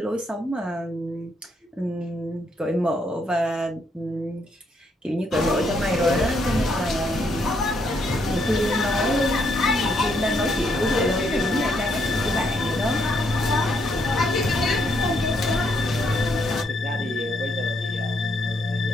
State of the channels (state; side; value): normal; both; correlation 0.74